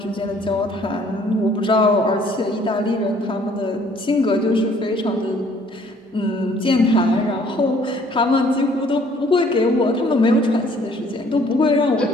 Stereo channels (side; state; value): both; normal; correlation 0.59